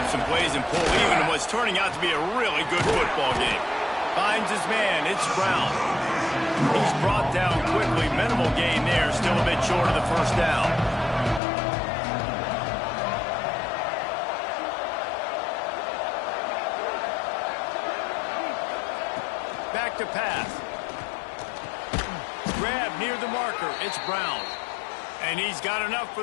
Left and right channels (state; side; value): drops out; right; at 11.4 s